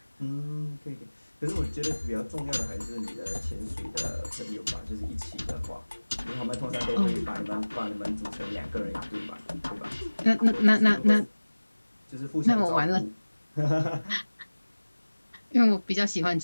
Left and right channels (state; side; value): inverted; both; correlation -1.00